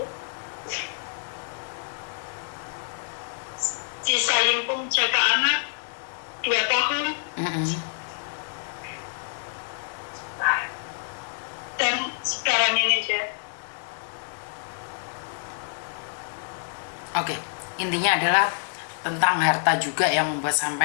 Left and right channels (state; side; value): silent; right; digital silence